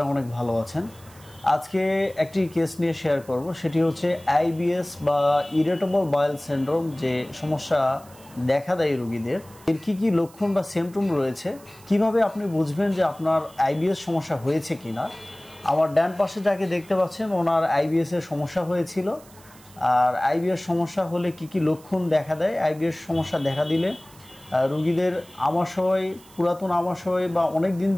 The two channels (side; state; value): right; noise; hiss, 24 dB below the sound